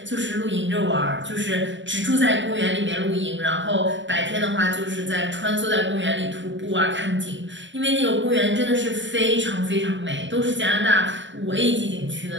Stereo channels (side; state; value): left; late; 0.54 ms